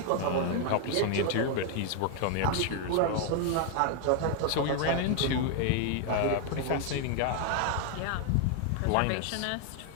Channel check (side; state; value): both; different; correlation 0.00